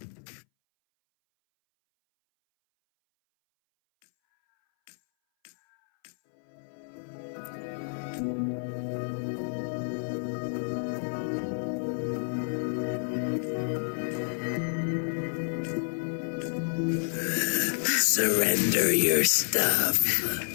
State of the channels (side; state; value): right; silent; 58 dB below the other